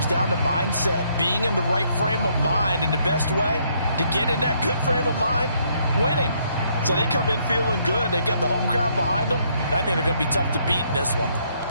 down to mindset. Being in the right frame of mind, and the best way to get in that good frame of mind, winning. So they come in feeling good. They've got the home crowd behind them. I think they're going to be tough to beat in this one.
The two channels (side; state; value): both; inverted; correlation -0.70